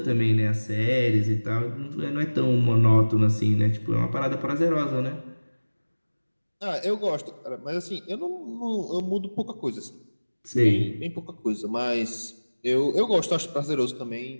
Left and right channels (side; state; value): both; inverted; correlation -1.00